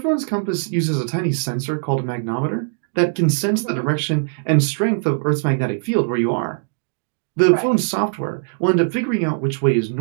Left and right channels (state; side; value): silent; left; digital silence